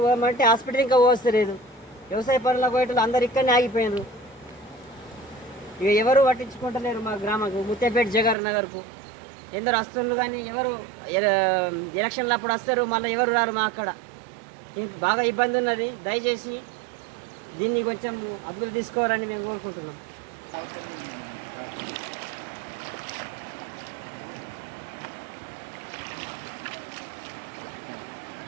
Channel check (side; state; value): left; drops out; at 8.3 s